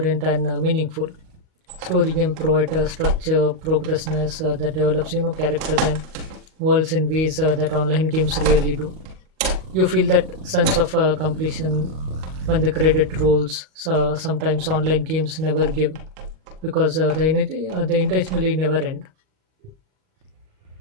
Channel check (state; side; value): late; left; 38 ms